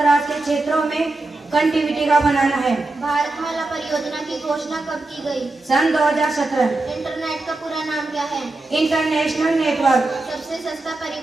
के क्षेत्रों में कनेक्टिविटी का बनाना है। भारतमाला परियोजना की घोषणा कब की गई? सन 2017। इंटरनेट का पूरा नाम क्या है? International network. सबसे सस्ता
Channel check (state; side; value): quieter; left; 3.1 dB